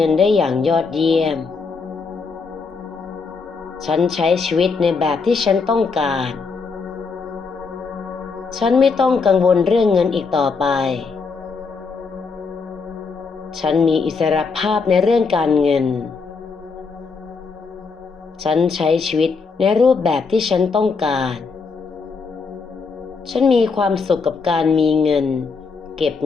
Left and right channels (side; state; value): right; quieter; 4.8 dB